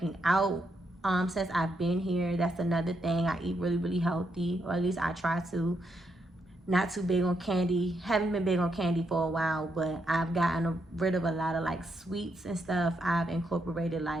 out since I've been here. That's another thing. I eat really, really healthy, or at least I try to. Not too big on candy. Haven't been big on candy for a while, but I've gotten rid of a lot of like sweets and stuff. I've incorporated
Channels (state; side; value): normal; both; correlation 0.79